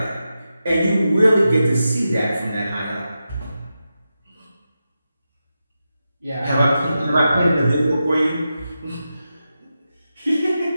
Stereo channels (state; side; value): inverted; both; correlation -0.90